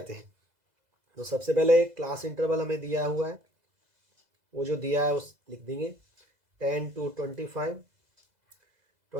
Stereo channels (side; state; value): left; late; 2.0 ms